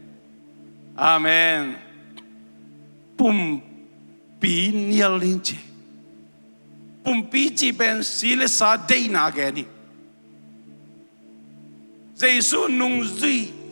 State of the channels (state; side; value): inverted; both; correlation -1.00